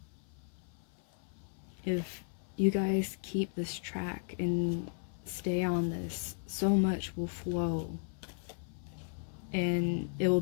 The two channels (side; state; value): right; silent; 54 dB below the other